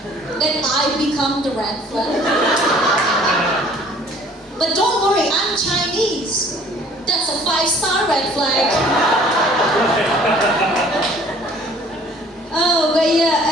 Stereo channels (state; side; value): normal; both; correlation 0.54